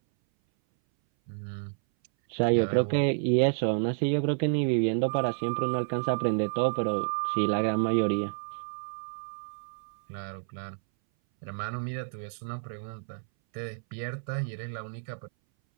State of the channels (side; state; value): left; silent; 58 dB below the other